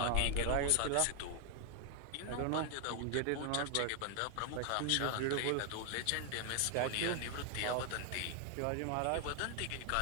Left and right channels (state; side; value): different; both; correlation 0.00